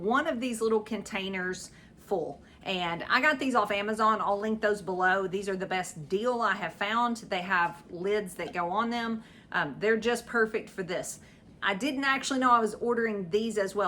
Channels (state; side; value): identical; both; correlation 1.00